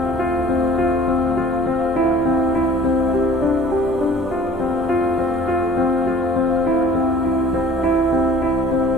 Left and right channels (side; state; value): both; normal; correlation 0.49